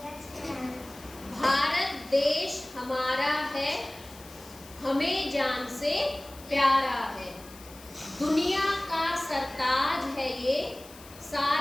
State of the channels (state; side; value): noise; left; hiss, 20 dB below the sound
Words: भारत देश हमारा है, हमें जान से प्यारा है। दुनिया का सरताज है ये,